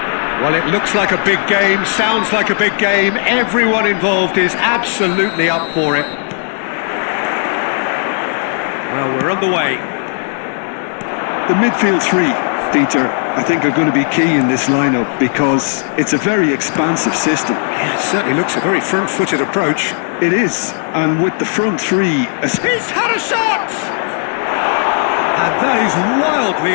Well, it looks like a big game, sounds like a big game. Everyone involved is absolutely up for it. Well, we're on the way. The midfield three, Peter, I think are going to be key in this lineup because it's a very expansive system. Yeah, it certainly looks a very front-footed approach. It is, and with the front three... He's had a shot! And that is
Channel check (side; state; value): right; silent; 60 dB below the other